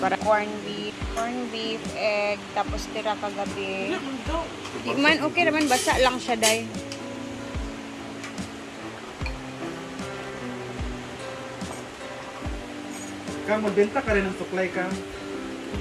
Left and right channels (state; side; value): identical; both; correlation 1.00